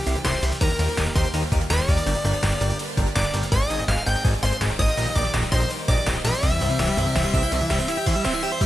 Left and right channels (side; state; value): both; normal; correlation 0.92